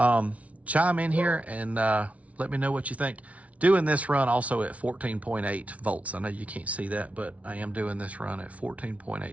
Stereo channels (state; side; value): late; left; 0.066 ms